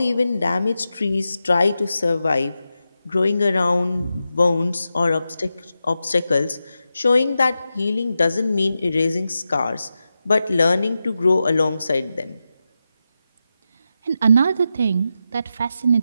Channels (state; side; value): inverted; both; correlation -0.90